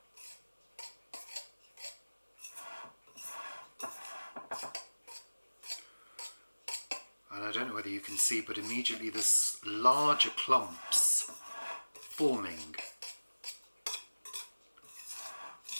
And I don't know whether you can see, but immediately there's larger clumps forming.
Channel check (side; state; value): both; inverted; correlation -1.00